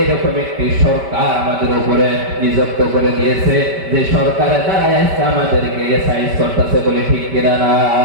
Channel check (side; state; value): left; late; 5.1 ms